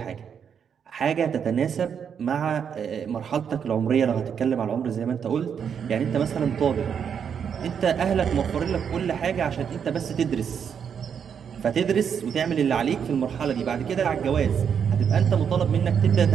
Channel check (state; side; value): quieter; left; 7.5 dB